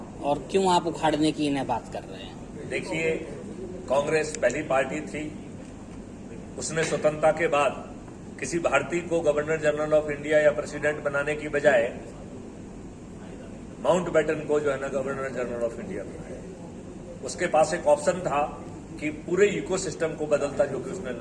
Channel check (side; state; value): both; identical; correlation 1.00